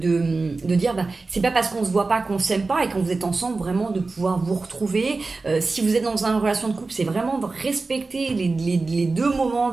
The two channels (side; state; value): left; quieter; 3.8 dB